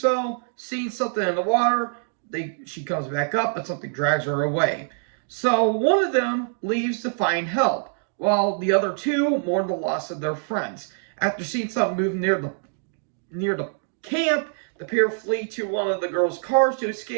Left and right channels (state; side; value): silent; left; digital silence